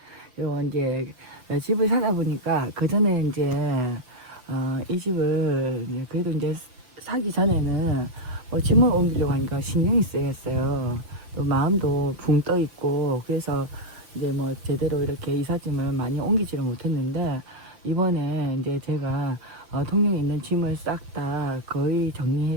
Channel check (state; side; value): late; left; 8.2 ms